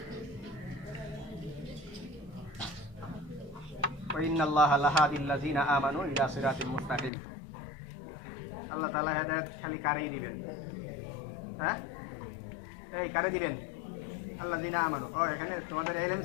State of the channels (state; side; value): drops out; right; at 7.1 s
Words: ইন্নাল্লাহা লাহাদিল লাযিনা আমানু ইলা সিরাতিল মুস্তাকিম। আল্লাহ তাআলা হেদায়েত খালি কারেই দিবেন, হ্যাঁ, এই কারে দিবেন, আল্লাযিনা আমানু। ও এখানে তোমাদের ইলম